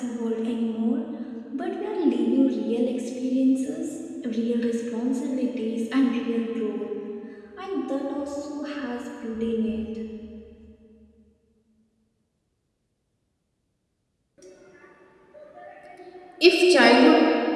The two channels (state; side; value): identical; both; correlation 1.00